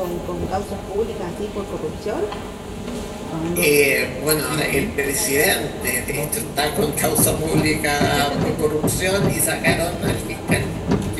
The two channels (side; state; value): both; identical; correlation 1.00